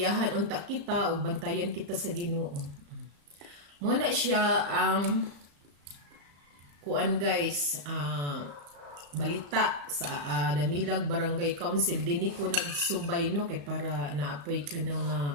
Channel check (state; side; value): late; left; 35 ms